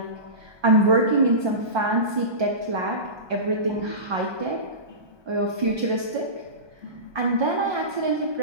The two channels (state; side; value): late; left; 1.2 ms